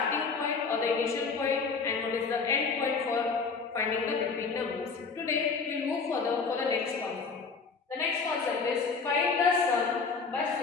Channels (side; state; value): right; quieter; 4.9 dB